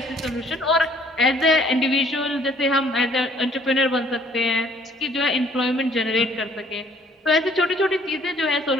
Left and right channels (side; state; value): both; normal; correlation 0.60